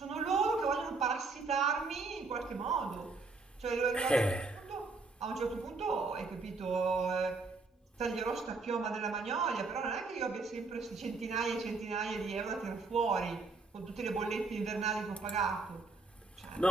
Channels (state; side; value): quieter; left; 3.9 dB